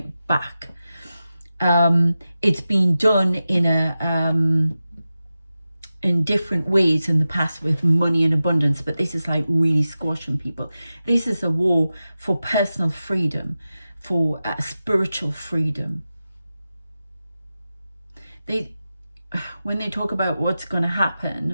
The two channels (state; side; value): inverted; both; correlation -0.93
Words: back. It's been done in different ways in the past with money and abundance, but this is like really squashing people. This is a war for personal freedom, for spiritual freedom. When they talk about what's going to